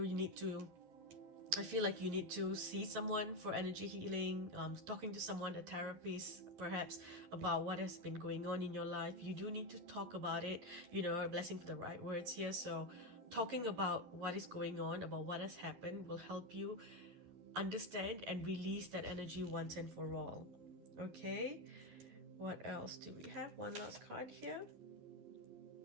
need to, I feel like you need to see someone for energy healing, talking to someone, a therapist perhaps, about what has been going on in your life. You do need to talk about it, you know, a blessing for the right words here. So talking about what is going on, about what has happened, will help you understand and release that energy once and for all. Okay, what else do we have? One last card here.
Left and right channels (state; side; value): late; left; 12 ms